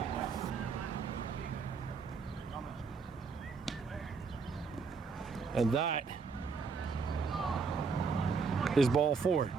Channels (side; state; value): left; quieter; 5.1 dB